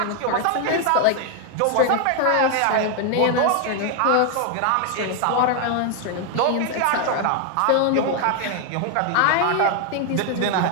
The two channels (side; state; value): both; different; correlation 0.00